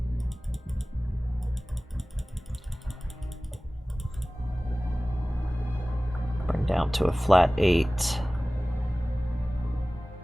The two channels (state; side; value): normal; both; correlation 0.98